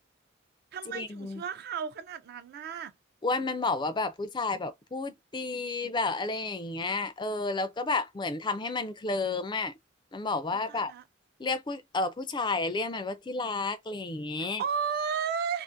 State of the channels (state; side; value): normal; both; correlation 0.08